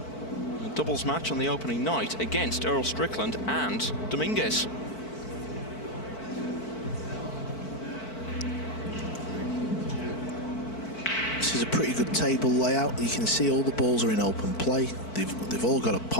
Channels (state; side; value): late; right; 4.5 ms